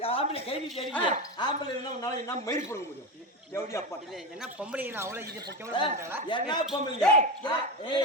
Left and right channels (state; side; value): normal; both; correlation 0.19